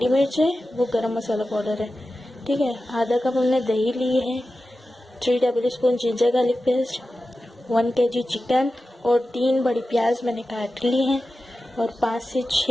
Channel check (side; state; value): both; normal; correlation 0.93